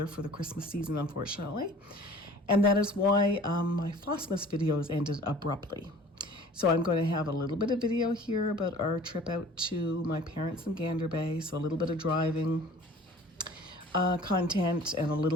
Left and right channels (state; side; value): normal; both; correlation 0.48